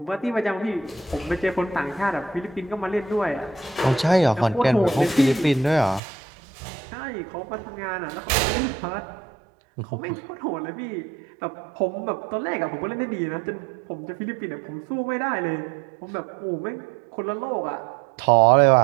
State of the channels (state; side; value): drops out; left; at 6.0 s